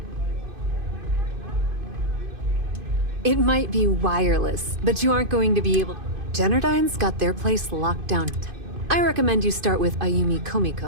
It might be wireless, but you aren't going to be able... Generdyne's got their place locked down. I recommend you start with Ayumi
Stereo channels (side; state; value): left; late; 2.5 ms